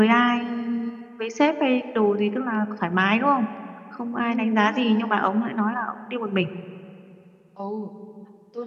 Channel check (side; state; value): both; identical; correlation 1.00